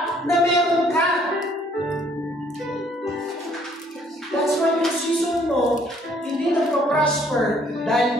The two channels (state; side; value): normal; both; correlation 0.62